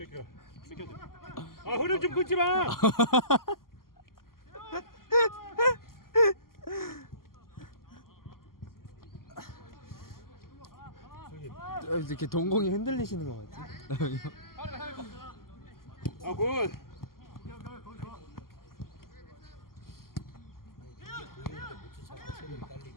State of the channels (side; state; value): right; late; 0.92 ms